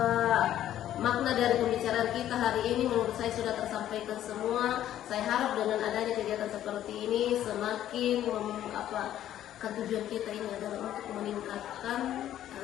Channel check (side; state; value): right; quieter; 11.9 dB